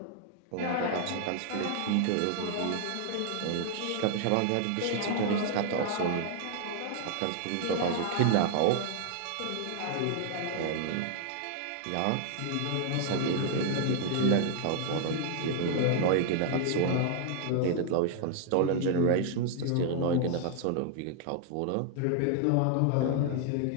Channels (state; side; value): different; both; correlation 0.00